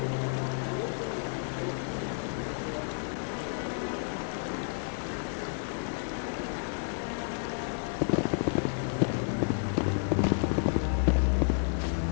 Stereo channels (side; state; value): right; silent; 57 dB below the other